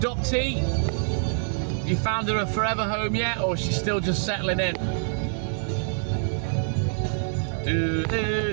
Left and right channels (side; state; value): left; silent; 61 dB below the other